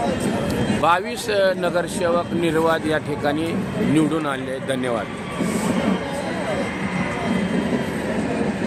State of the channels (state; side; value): identical; both; correlation 1.00